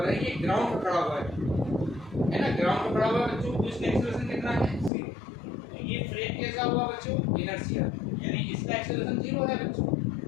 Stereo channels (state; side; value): drops out; right; at 4.9 s